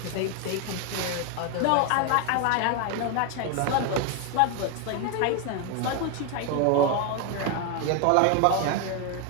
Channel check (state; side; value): different; both; correlation 0.01